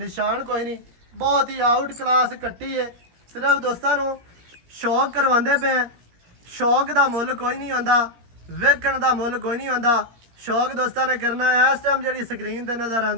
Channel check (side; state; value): left; late; 17 ms